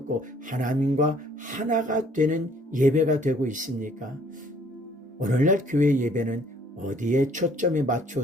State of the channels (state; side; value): normal; both; correlation 0.60